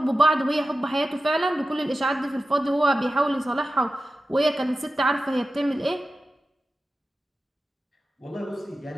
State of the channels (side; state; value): both; normal; correlation 0.94